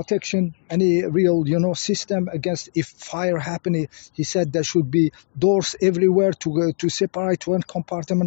any real, system against if fire happening. He said there should be doors everywhere to separate one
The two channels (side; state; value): right; silent; digital silence